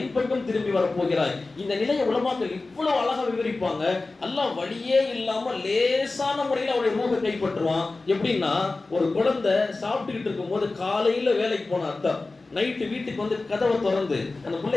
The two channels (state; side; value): quieter; right; 3.4 dB